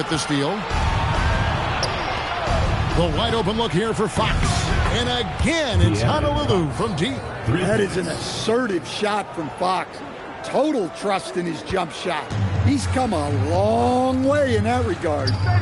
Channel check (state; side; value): identical; both; correlation 1.00